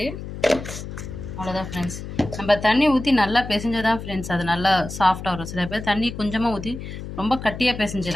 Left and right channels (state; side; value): noise; left; hum, 9 dB below the sound